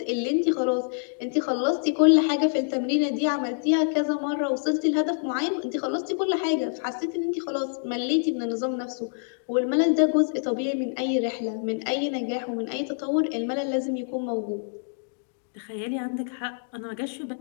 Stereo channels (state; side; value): silent; right; digital silence